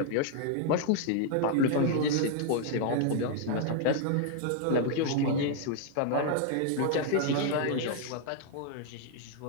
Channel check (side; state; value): both; different; correlation 0.00